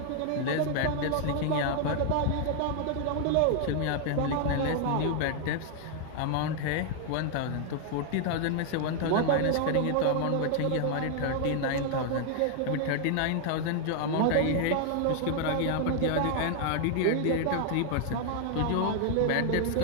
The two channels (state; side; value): different; both; correlation 0.00